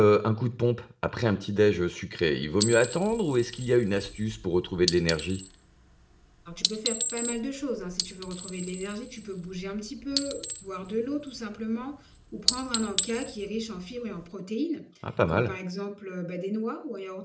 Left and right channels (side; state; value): both; identical; correlation 1.00